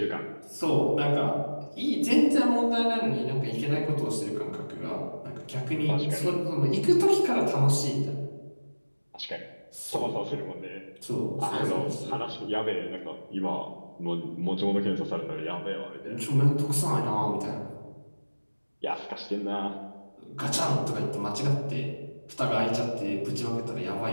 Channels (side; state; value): both; inverted; correlation -1.00